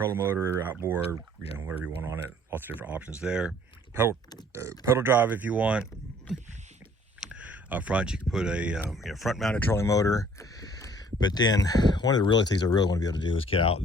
motor, outboard, whatever you want on it. Lots of different options there. Pedal drive if you want. Up front, you can put a front-mounted trolling motor. But then, one of the really things I really want to be able to do is get out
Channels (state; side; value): normal; both; correlation 0.57